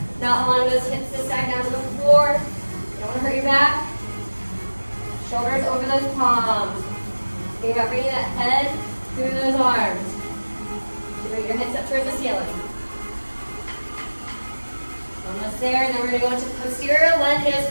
not allowing those hips to sag down to the floor. You don't want to hurt your back. Shoulders over those palms. Think about bringing that head through those arms. So bring your hips up towards the ceiling. Almost there, and then we're going to go into posterior lunges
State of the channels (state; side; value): inverted; both; correlation -1.00